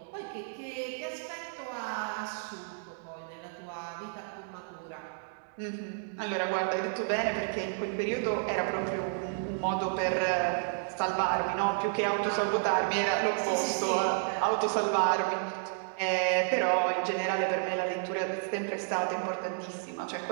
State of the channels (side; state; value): left; silent; digital silence